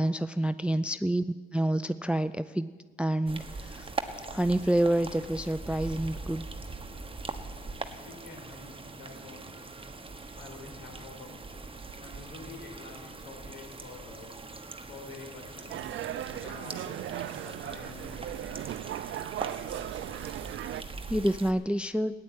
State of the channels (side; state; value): both; normal; correlation 0.84